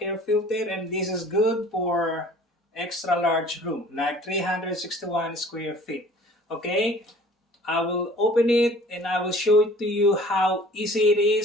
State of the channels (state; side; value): normal; both; correlation 0.49